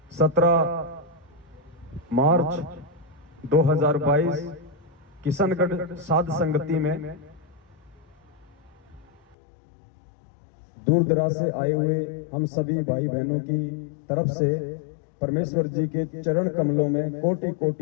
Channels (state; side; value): drops out; right; at 9.3 s